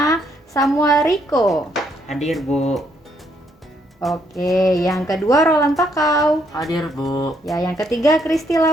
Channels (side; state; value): both; normal; correlation 0.72